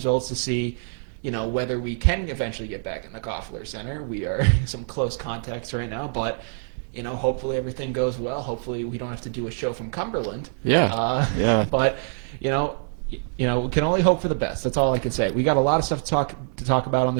to see whether we can eventually get back in the Koffler Center. We are in some close contacts right now, but, hopefully everything goes well. Hopefully we don't have to do a show from Cumberland. Yeah. But, we can only hope for the best. That's all I can say. We got a lot of stuff to talk about on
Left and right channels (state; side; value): silent; left; 62 dB below the other